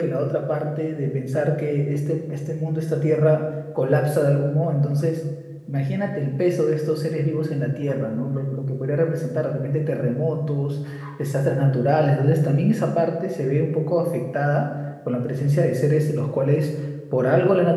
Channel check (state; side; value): identical; both; correlation 1.00